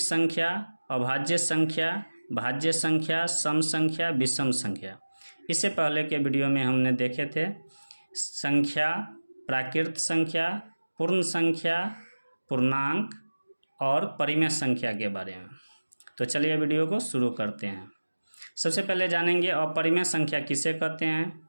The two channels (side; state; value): both; inverted; correlation -1.00